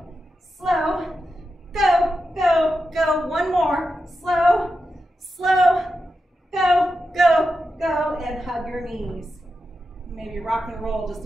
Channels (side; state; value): both; normal; correlation 0.89